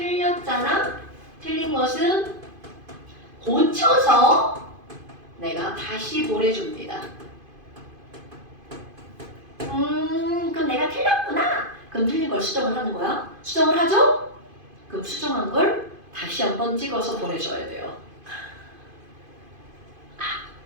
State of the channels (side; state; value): left; late; 2.5 ms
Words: 틀린 것은 고쳐서 내가 다시 보내줍니다. 그럼 내가 틀렸구나. 그럼 틀린 걸 수정을 하는 거야. 수정을 하죠? 그럼 수정한 걸 다시 한번 찍어서 보내줘야 돼요.